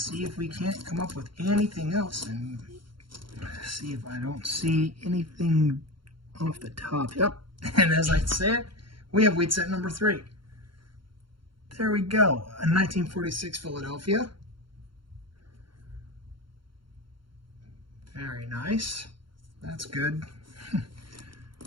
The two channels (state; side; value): late; left; 0.73 ms